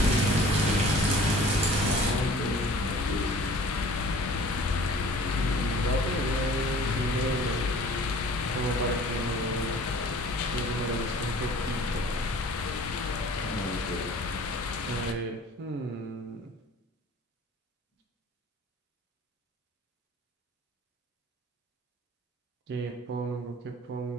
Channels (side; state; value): both; normal; correlation 0.48